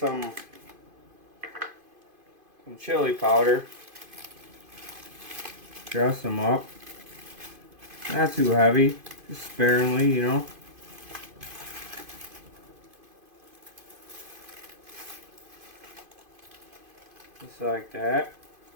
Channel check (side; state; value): left; late; 2.5 ms